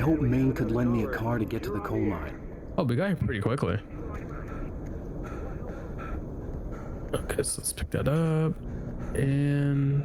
Maine could lend me a car to get to the coal mine. Oh, we got here pretty quickly. Okay, so let's pick that up.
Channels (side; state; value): both; identical; correlation 1.00